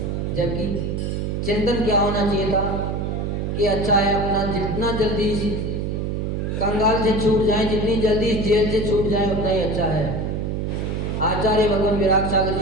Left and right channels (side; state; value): right; noise; hum, 2 dB below the sound